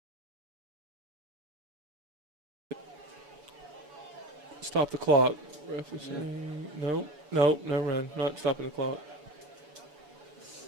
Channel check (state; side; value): late; left; 6.8 ms